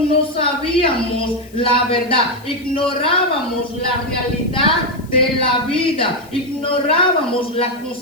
no sabíamos la verdad, ignorábamos la realidad de la vida, ignorábamos la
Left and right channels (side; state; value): left; noise; hiss, 26 dB below the sound